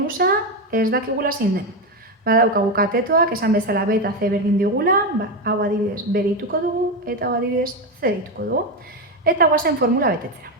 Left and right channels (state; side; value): normal; both; correlation 0.11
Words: ez dakigula zein den. Badaukagu katetoak, esan bezala B eta C berdin digula, hau adibidez B deituko dugu eta hau adibidez C deituko dugu. Eta guazen formula betetzera.